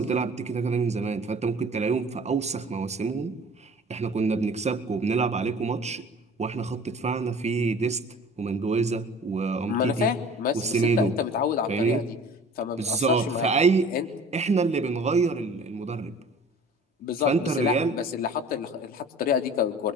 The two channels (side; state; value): both; normal; correlation 0.45